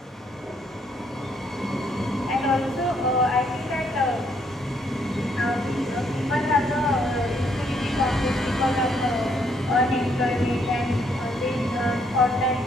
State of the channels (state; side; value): normal; both; correlation 0.70